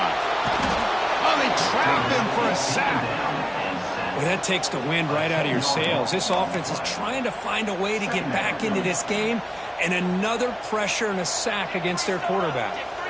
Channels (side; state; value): both; identical; correlation 1.00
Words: Oh, they trap him for a sack. Well, that takes the wind right out of your sails. This offense is trying to find a way to get back into this game, and another pressure and a sack against their quarterback.